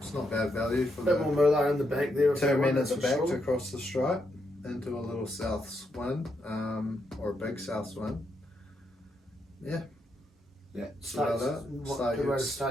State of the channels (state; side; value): normal; both; correlation 0.80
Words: not bad value for a bit more moolah in the back there. 2 minutes back to cross the stripe into a little Souths win, or a big Souths win. Yeah. Yeah, start good way to